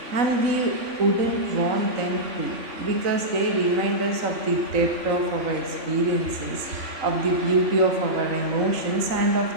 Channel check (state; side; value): late; left; 3.9 ms